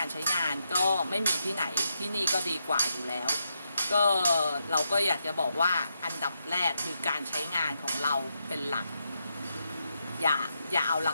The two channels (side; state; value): both; inverted; correlation -0.83